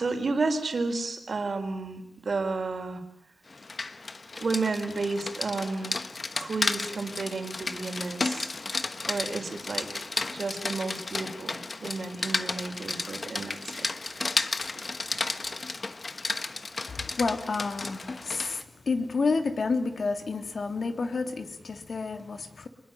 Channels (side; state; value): both; normal; correlation 0.91